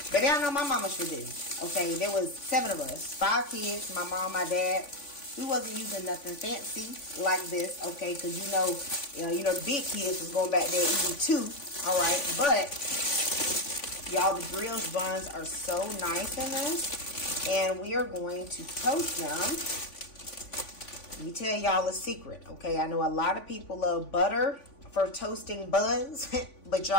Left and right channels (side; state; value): right; late; 3.5 ms